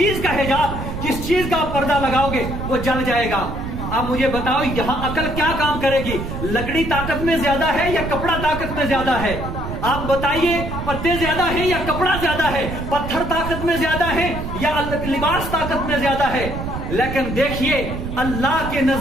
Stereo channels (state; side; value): noise; right; rumble, 6 dB below the sound